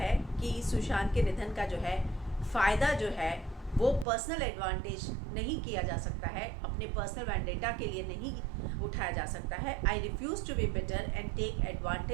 कि सुशांत के निधन का जो है फ़ायदा जो है वो पर्सनल एडवांटेज नहीं किया जा सकता है, अपने पर्सनल वैंडेटा के लिए नहीं उठाया जा सकता है। I refuse to be bitter and take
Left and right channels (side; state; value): left; drops out; at 4.0 s